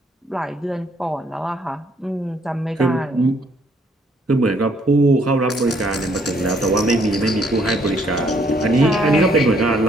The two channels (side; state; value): both; normal; correlation 0.67